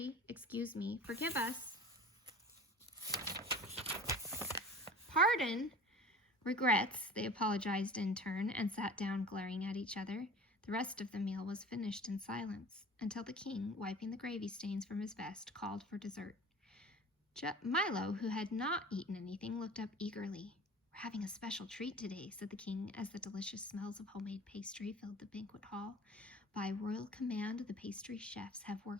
excuse me, forgive us." "Pardon?" "Regrets," they apologized in turn, and sat down glaring at each other. The rest of the meal was finished in silence, until the king, wiping the gravy stains from his vest, called for dessert. Milo, who had not eaten anything, looked up eagerly. "We're having a special treat today," said the king, as the delicious smells of homemade pastry filled the banquet hall. "By royal command, the pastry chefs have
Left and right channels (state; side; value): normal; both; correlation 0.40